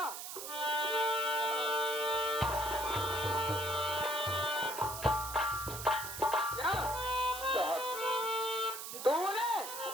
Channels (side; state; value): right; noise; hiss, 8 dB below the sound